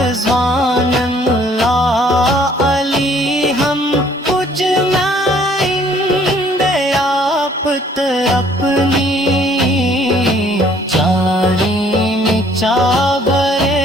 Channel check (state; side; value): normal; both; correlation 0.60